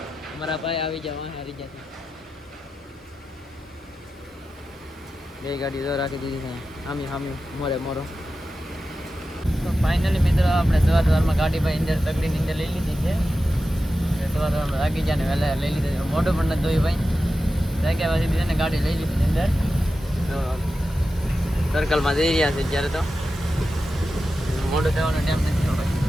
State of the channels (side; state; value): both; normal; correlation 0.92